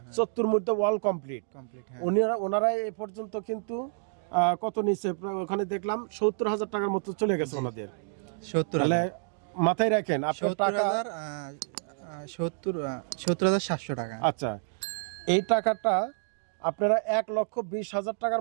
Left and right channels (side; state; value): left; silent; digital silence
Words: 70 মধ্যে ওয়াল কমপ্লিট, ওনারা এ পর্যন্ত কিন্তু কত নিচে, ওখানে দেখলাম 70,000 টাকার মতো চলে গেছে ওনাদের। 70,000 মাথায় রাখেন আপনার টাকা 70,700 টাকা। আচ্ছা, এই টাকাটা আপনারা 1,20,000